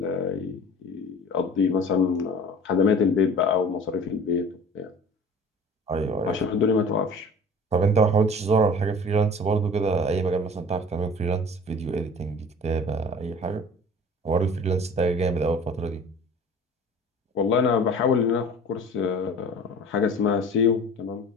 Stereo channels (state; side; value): normal; both; correlation 0.43